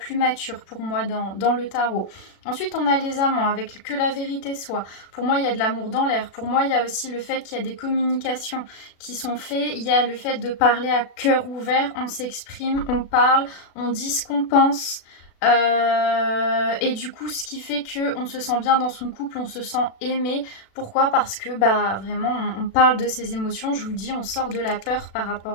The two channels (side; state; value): right; late; 36 ms